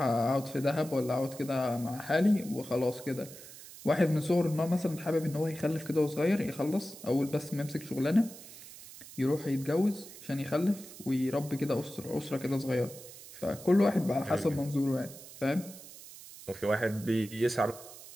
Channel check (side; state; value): right; noise; hiss, 16 dB below the sound